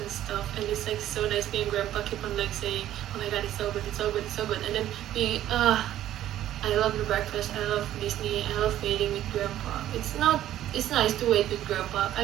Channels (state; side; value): quieter; left; 12.6 dB